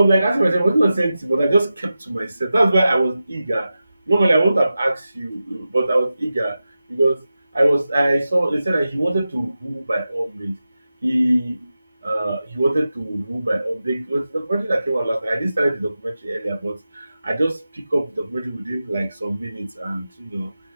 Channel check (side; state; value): both; inverted; correlation -0.93